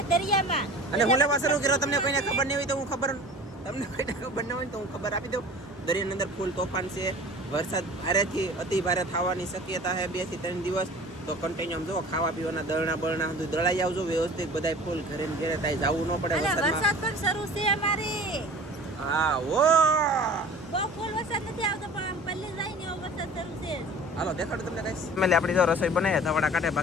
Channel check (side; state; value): both; normal; correlation 0.43